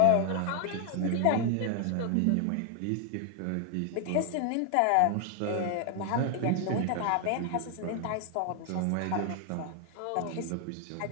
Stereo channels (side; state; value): both; different; correlation 0.00